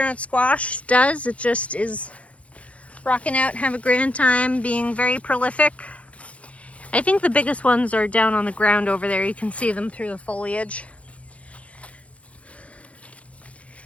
squash does, it just is rocking out, have a grand time, being very prolific. I think the biggest ones are down on the ground over there. You can see them through the foliage.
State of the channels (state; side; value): late; right; 0.064 ms